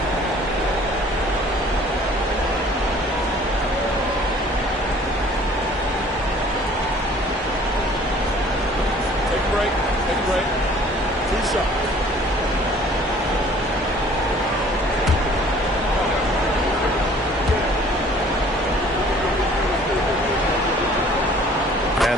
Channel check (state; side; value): normal; both; correlation 0.53